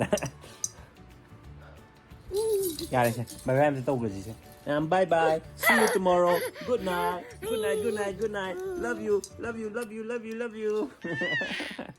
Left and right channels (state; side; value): identical; both; correlation 1.00